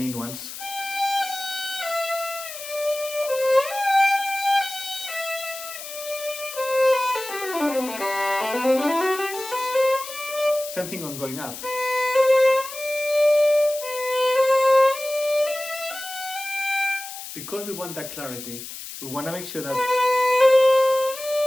ones. Same thing on going up. Because we want that clarity, we want to make sure that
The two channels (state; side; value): noise; left; hiss, 11 dB below the sound